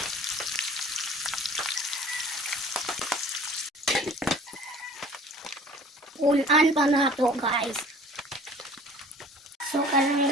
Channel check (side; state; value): both; normal; correlation 0.47